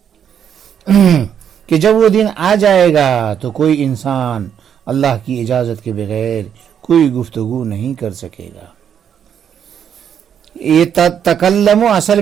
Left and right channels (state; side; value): quieter; left; 8.5 dB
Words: کہ جب وہ دن آ جائے گا تو کوئی انسان اللہ کی اجازت کے بغیر کوئی گفتگو نہیں کر سکے گا۔ یہ تکلم اصل